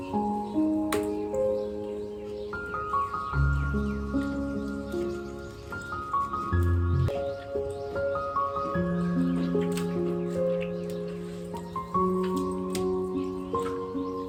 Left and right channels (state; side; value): identical; both; correlation 1.00